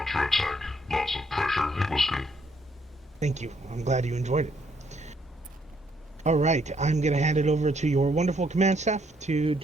Lots of pressure. It was good. Thank you. I'm glad you enjoyed it. Alright, I'm going to hand it over to your wonderful command staff to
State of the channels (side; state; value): both; normal; correlation 0.70